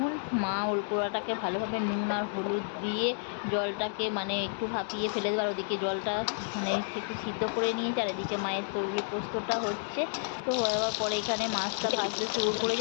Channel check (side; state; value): right; silent; digital silence